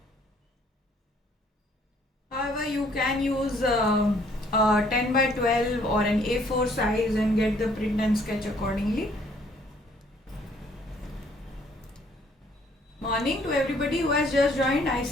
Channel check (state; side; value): normal; both; correlation 0.62